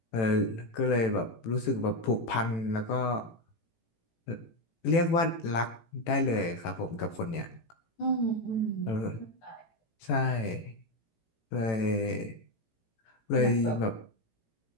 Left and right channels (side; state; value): right; late; 18 ms